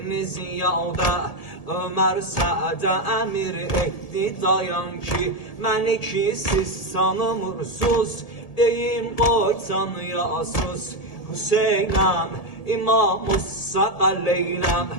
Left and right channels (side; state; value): right; late; 1.7 ms